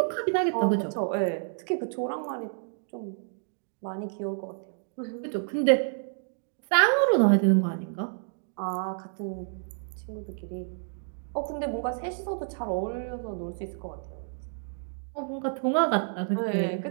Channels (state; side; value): silent; left; digital silence